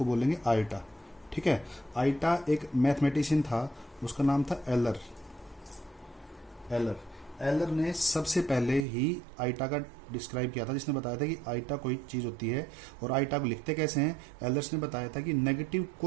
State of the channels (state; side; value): drops out; left; at 8.8 s